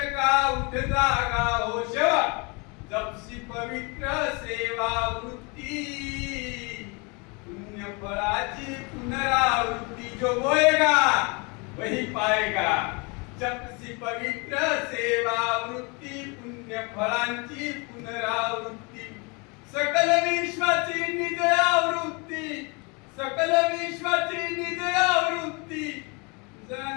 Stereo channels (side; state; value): right; quieter; 30.4 dB